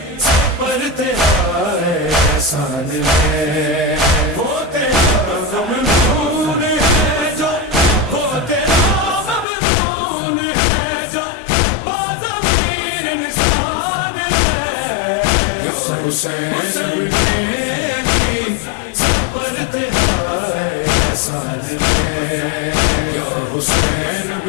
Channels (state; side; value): drops out; right; at 9.5 s